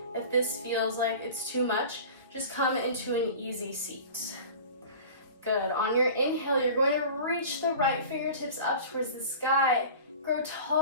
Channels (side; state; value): both; inverted; correlation -0.38